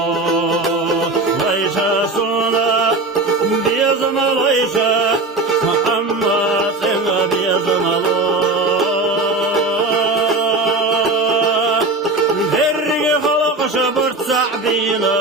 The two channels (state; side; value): quieter; left; 3.1 dB